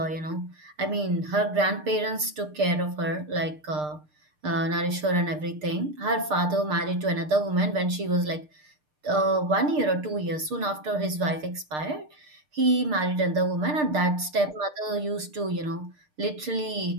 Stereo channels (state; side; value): late; left; 6.6 ms